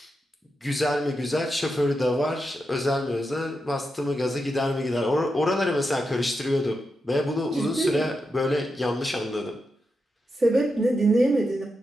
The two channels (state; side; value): normal; both; correlation 0.87